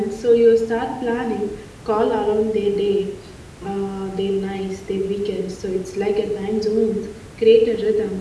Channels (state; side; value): identical; both; correlation 1.00